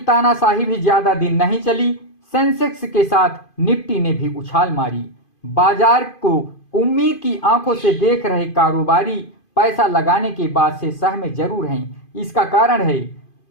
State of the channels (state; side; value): late; right; 2.5 ms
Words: भी ज्यादा दिन नहीं चली। सेंसेक्स के साथ निफ्टी ने भी उछाल मारी। बाजार को उम्मीद की आंखों से देख रहे कारोबारी पैसा लगाने के बाद से सहमे जरूर हैं। इसका कारण है